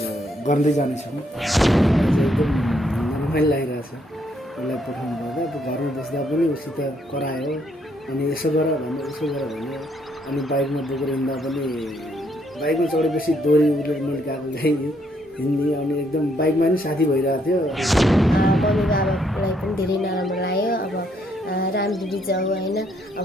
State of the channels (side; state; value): both; normal; correlation 0.72